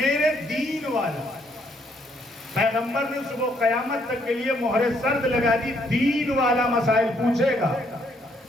دین والا. پیغمبر نے صبح قیامت تک کے لیے مہر سرد لگا دی، دین والا مسائل پوچھے گا،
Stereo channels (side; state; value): both; normal; correlation 0.70